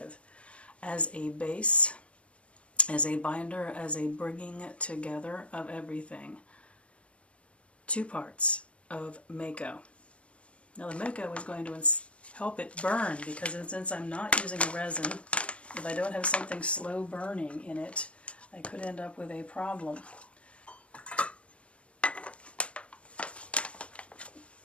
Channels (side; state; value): right; late; 0.061 ms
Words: as a base, as a binder, as a bringing together of everything, 2 parts of Mako. Now the Mako is going to help it burn, because since I'm not using a resin, if I don't have something slow burning in it, I could end up with a problem.